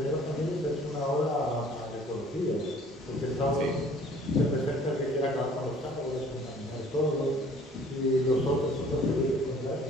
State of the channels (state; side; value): normal; both; correlation 0.54